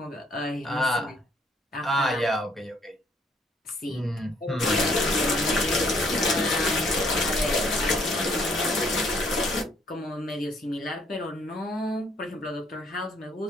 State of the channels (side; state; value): both; normal; correlation 0.65